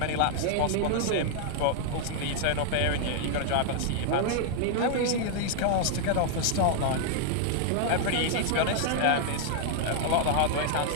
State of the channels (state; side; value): different; both; correlation 0.00